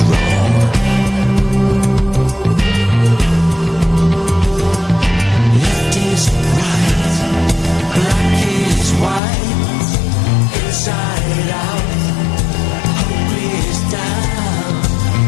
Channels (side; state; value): right; drops out; at 9.2 s